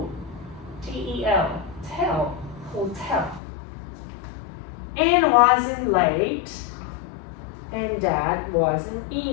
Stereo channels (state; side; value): drops out; right; at 3.4 s